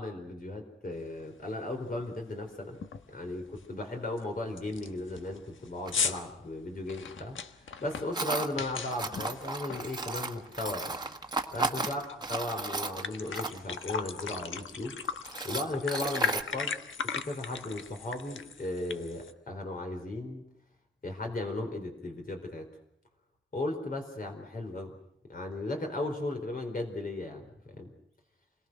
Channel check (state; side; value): normal; both; correlation 0.48